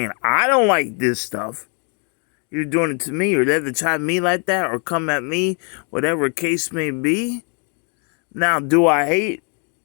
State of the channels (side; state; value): right; quieter; 39.0 dB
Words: I don't like this stuff. You're doing it to me, or they to try me like that, or come at me, whatever case may be. Now, do I hate